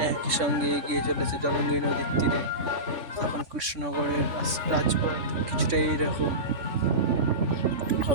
একই সঙ্গে এগিয়ে চলেছে জলঙ্গি নদীর তীরে। তখন কৃষ্ণনগরের রাজপথ কিছুটা এইরকম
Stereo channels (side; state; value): left; late; 3.4 ms